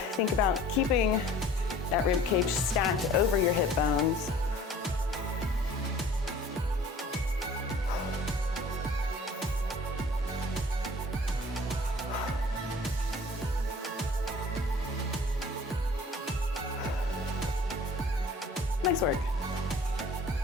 think about keeping that rib cage stacked over your hip bones. Nice work.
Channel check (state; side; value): normal; both; correlation 0.49